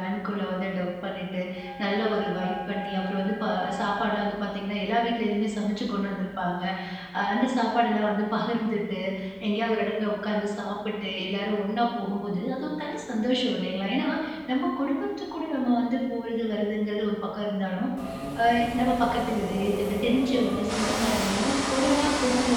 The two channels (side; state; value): both; identical; correlation 1.00